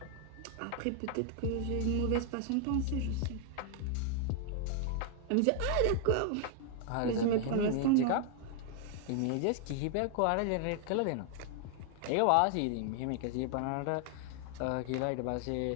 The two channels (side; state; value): both; different; correlation 0.00